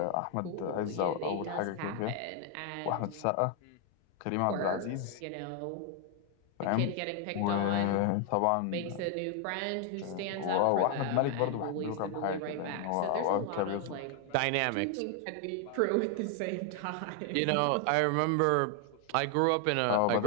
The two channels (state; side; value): different; both; correlation 0.00